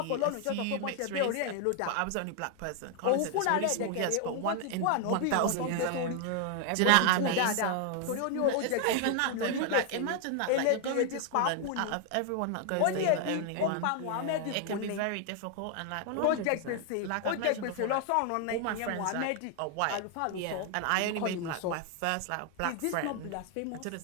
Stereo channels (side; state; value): both; different; correlation 0.00